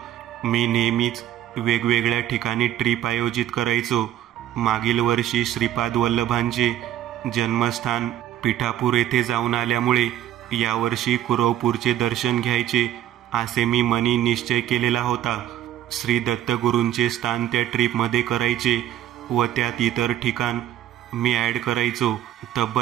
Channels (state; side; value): quieter; left; 11.9 dB